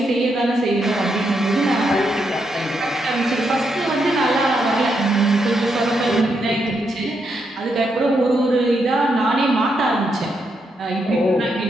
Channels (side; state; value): both; normal; correlation 0.80